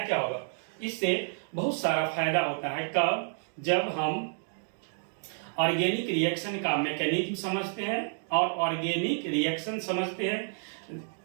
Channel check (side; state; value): left; silent; digital silence